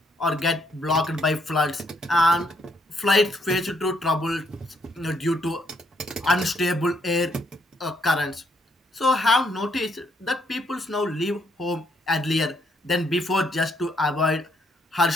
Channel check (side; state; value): both; normal; correlation 0.72